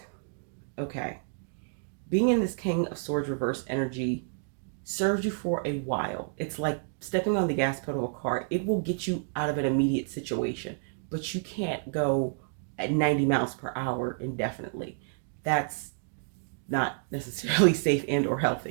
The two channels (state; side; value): silent; left; digital silence